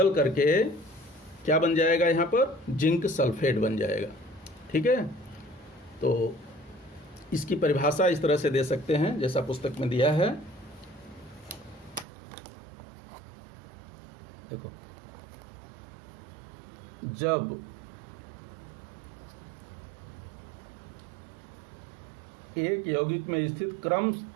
करके क्या बन जाएगा, यहाँ पर जिंक सल्फेट बन जाएगा। ठीक है, तो इसकी परिभाषा इस तरह से दे सकते हैं जैसा पुस्तक में दिया है। देखो, जब एक यौगिक में स्थित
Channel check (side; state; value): left; drops out; at 12.1 s